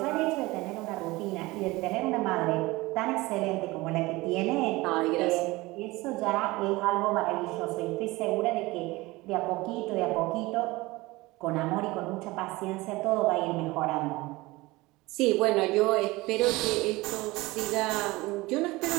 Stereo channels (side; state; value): left; quieter; 21.1 dB